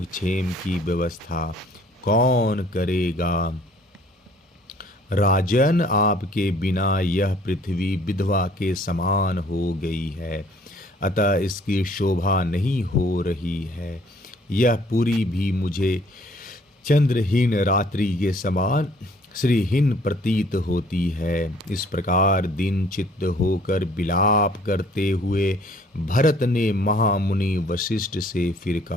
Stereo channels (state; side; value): normal; both; correlation 0.58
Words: क्षेम की व्यवस्था कौन करेगा। राजन, आपके बिना यह पृथ्वी विधवा के समान हो गई है, अतः इसकी शोभा नहीं हो रही है। यह पूरी भी मुझे चंद्रहीन रात्रि के समान श्रीहीन प्रतीत होती है। इस प्रकार दिन चित्त होकर विलाप करते हुए भरत ने महामुनि वशिष्ठ से फिर